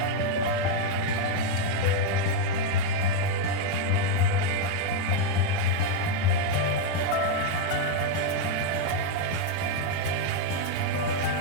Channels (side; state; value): both; different; correlation 0.01